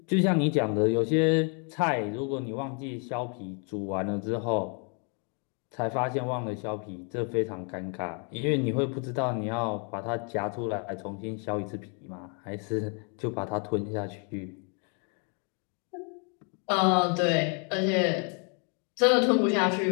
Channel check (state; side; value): quieter; right; 39.5 dB